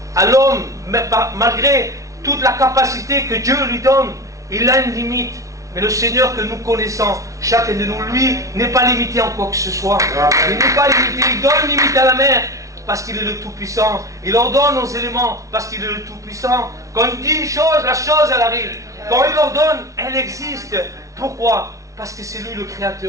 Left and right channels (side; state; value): left; late; 0.16 ms